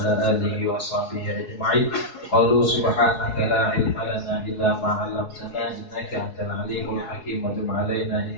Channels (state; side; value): late; right; 4.7 ms